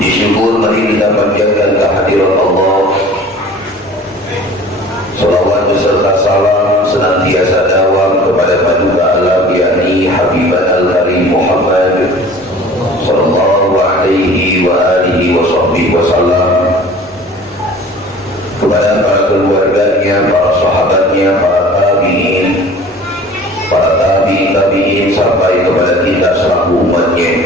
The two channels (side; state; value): both; normal; correlation 0.45